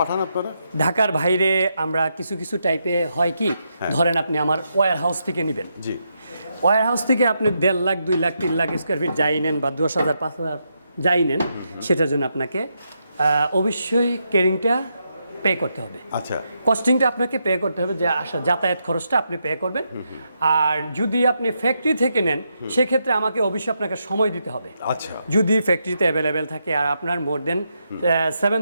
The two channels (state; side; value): inverted; both; correlation -0.82